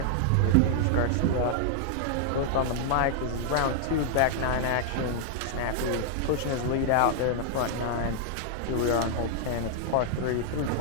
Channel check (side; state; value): both; different; correlation -0.01